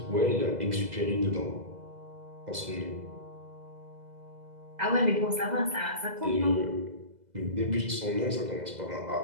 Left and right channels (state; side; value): late; left; 2.0 ms